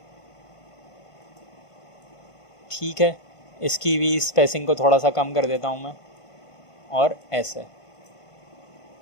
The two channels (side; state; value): right; late; 1.5 ms